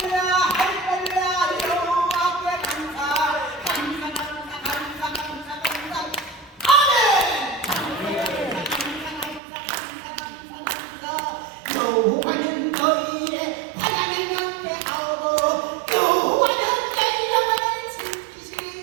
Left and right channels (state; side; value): drops out; left; at 9.4 s